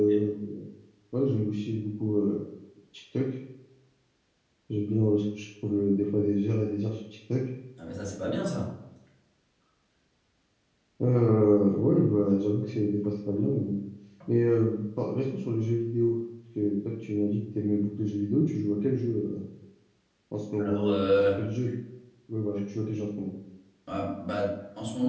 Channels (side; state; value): both; identical; correlation 1.00